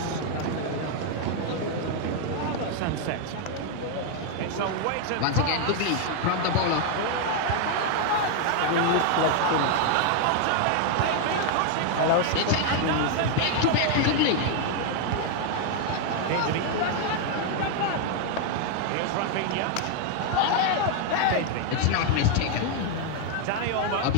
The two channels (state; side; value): different; both; correlation 0.00